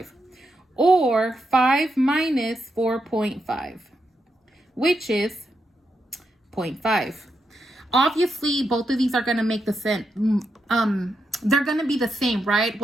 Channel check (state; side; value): normal; both; correlation 0.84